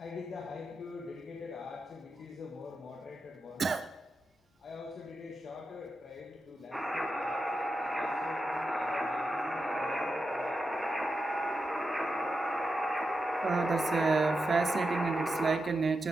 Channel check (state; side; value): normal; both; correlation 0.88